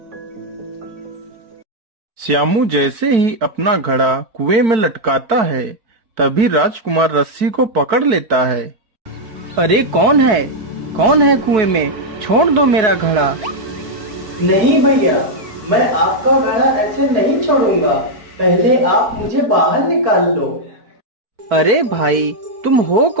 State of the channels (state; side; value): late; left; 4.6 ms